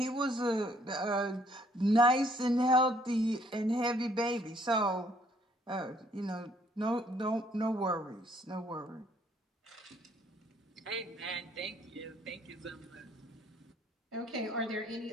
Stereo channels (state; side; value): normal; both; correlation 0.65